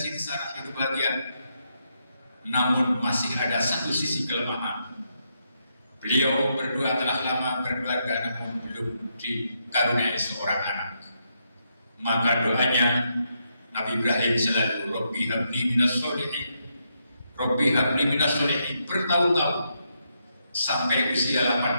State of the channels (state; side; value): inverted; both; correlation -0.80